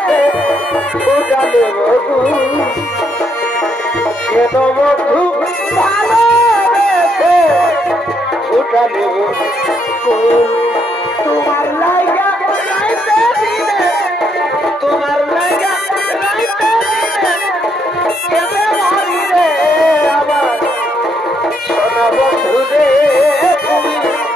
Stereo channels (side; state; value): both; normal; correlation 0.74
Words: ফোটালে কেন বন্ধু ভালোবেসে ফোটালে তোমার লাইগা রাইতে দিনে তোমার লাইগা রাইতে দিনে কেমনে মরি রে আবার সোনা বন্ধু রে তুমি